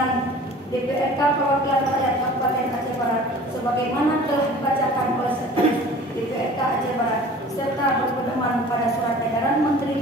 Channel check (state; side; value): normal; both; correlation 0.45